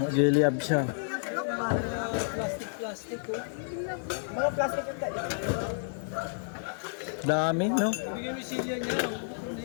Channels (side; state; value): right; silent; 58 dB below the other